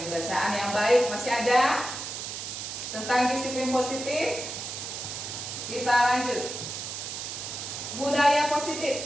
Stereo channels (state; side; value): noise; right; hiss, 6 dB below the sound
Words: yang baik masih ada. Tentang disiplin positif, kita lanjut. Budaya